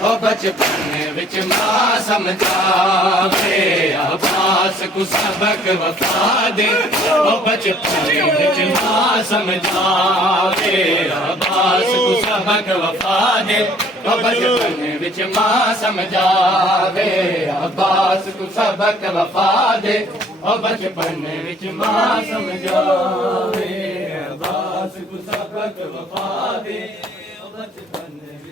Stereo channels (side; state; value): both; normal; correlation 0.58